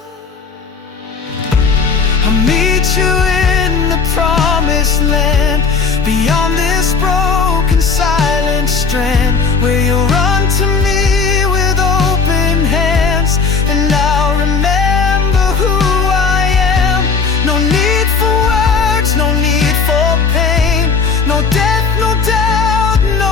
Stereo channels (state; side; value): quieter; right; 5.1 dB